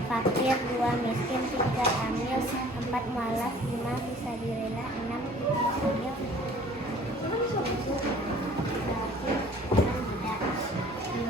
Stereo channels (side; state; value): both; normal; correlation 0.51